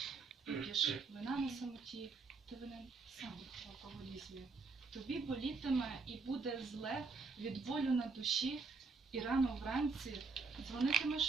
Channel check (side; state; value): left; quieter; 4.3 dB